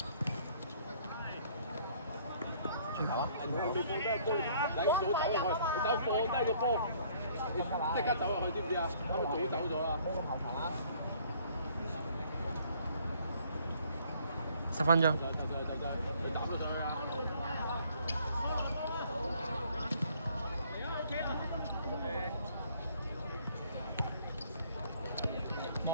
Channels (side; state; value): both; inverted; correlation -0.61